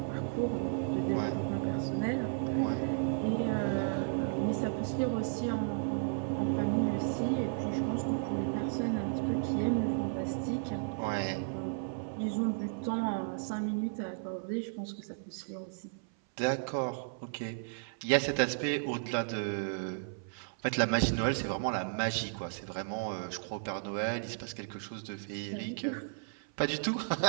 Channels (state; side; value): silent; left; 55 dB below the other